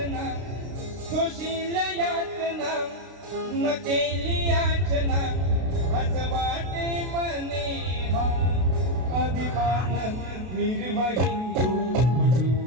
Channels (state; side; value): late; left; 32 ms